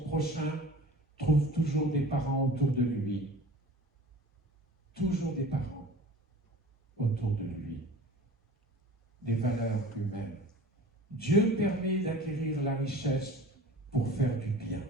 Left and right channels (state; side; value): normal; both; correlation 0.42